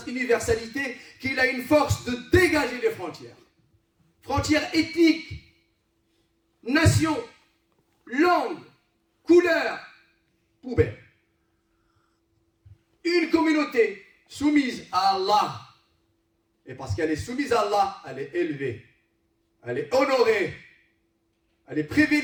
universalité qu'il a une force de dégager les frontières. Frontières ethniques, nations, langues, couleurs, poubelles. Une communauté soumise à Allah. Et parce qu'elle est soumise à Allah, elle est élevée, elle est honorée, elle est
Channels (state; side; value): identical; both; correlation 1.00